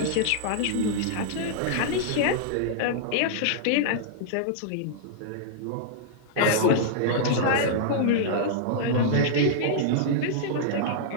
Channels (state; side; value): different; both; correlation -0.01